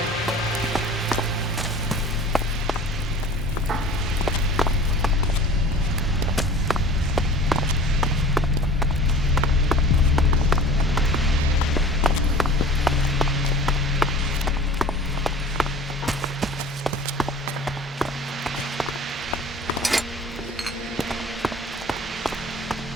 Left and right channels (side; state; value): both; normal; correlation 0.42